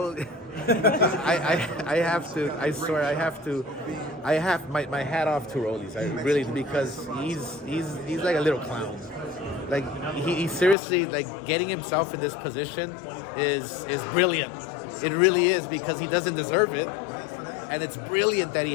I have to. I swear, I have my hat off to Rollies. Really, because he's like a little clown. Like he seriously, like, getting himself in this position is brilliant. It really is, because he doesn't deserve it, and it's brilliant that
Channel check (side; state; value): right; drops out; at 10.8 s